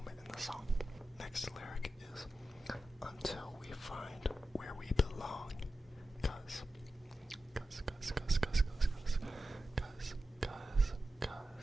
in the song. Next lyric is until we find where we belong. Cause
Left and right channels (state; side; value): normal; both; correlation 0.92